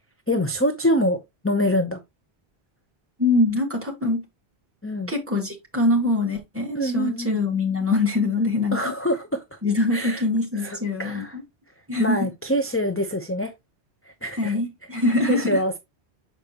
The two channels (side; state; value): both; normal; correlation 0.11